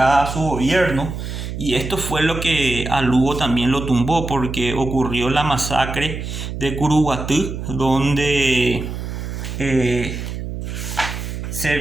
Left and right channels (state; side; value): noise; right; hum, 6 dB below the sound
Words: a su gobierno, y esto fue lo que a Lugo también lo tumbó, porque ocurrió la masacre de Curuguatú, donde